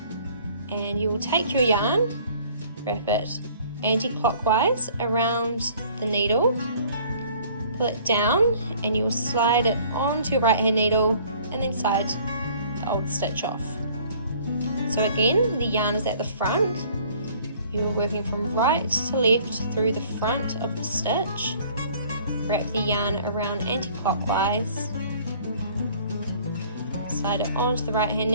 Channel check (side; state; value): both; inverted; correlation -0.54